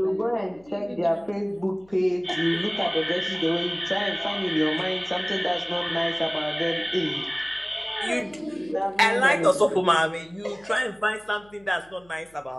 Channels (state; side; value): noise; left; hum, 29 dB below the sound